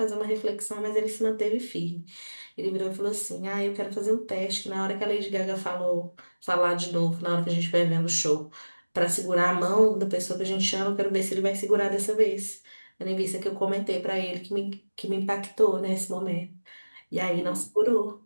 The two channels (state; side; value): inverted; both; correlation -1.00